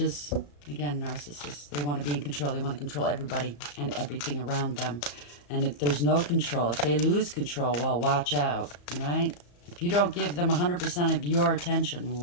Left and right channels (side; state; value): right; late; 34 ms